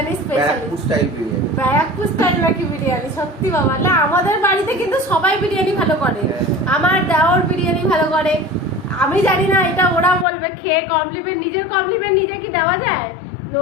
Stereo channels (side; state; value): right; drops out; at 10.2 s